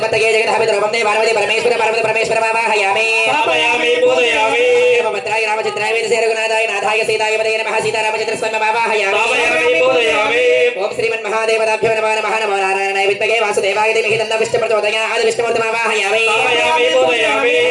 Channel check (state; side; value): identical; both; correlation 1.00